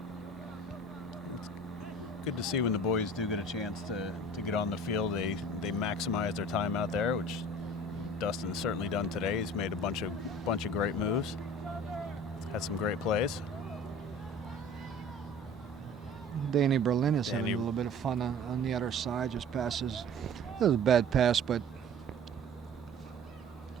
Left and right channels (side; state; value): both; normal; correlation 0.44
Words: It's good to see when the boys do get a chance to get on the field. They maximize their time out there, which Dustin's certainly done today. He's made a bunch of great moves. Had some great plays. Danny Berlin is having Danny- a little bit of fun on the other side. Just passes. It was a bad pass, but